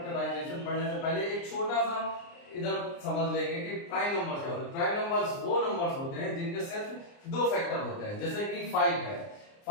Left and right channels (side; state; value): right; late; 29 ms